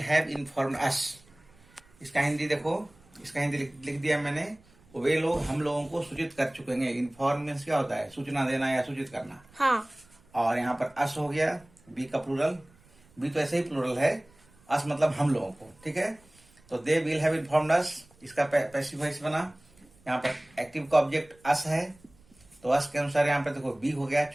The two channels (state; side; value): noise; right; rumble, 29 dB below the sound